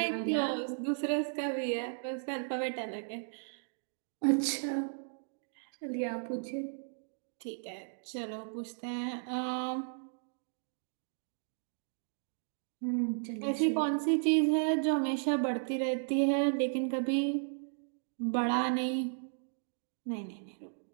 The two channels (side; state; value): left; silent; digital silence